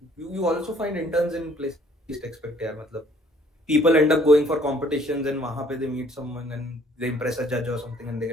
You also find interns in places you least expect. Yeah, matlab, people end up going for competitions and wahan pe they meet someone and they impress a judge or something and they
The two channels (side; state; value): both; normal; correlation 0.60